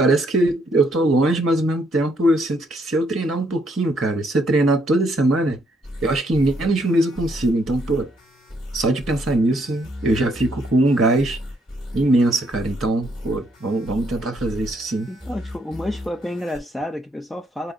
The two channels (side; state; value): both; normal; correlation 0.72